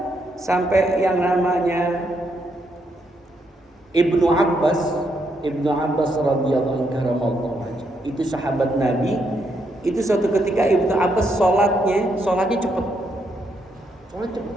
Sampai yang namanya Ibnu Abbas radhiyallahu anhu, itu sahabat Nabi. Itu suatu ketika Ibnu Abbas sholatnya cepet.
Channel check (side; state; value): both; normal; correlation 0.77